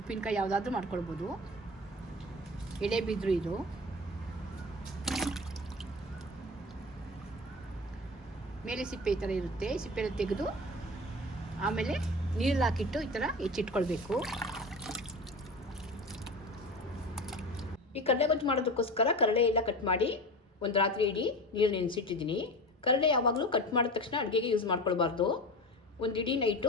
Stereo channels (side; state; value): both; normal; correlation 0.31